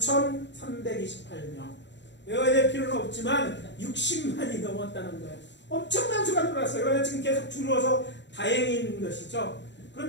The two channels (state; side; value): late; right; 0.52 ms